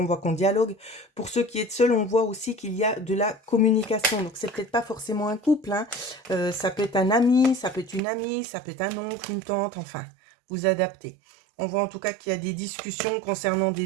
voit qu'on dialogue. Pour ceux qui êtes seul, on voit aussi qu'il y a de la communication. Donc c'est peut-être pas forcément un couple. Hein. Ça peut être un ami, ça peut être une amie, ça peut être un oncle, une tante, enfin, vous adaptez. On voit en tout cas qu'il y a des discussions concernant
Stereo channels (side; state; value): left; drops out; at 8.0 s